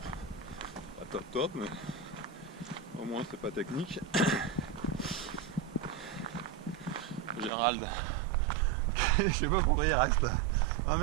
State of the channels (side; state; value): left; drops out; at 7.5 s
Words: pas top, mais au moins c'est pas technique. Gérald, je sais pas pourquoi il reste 20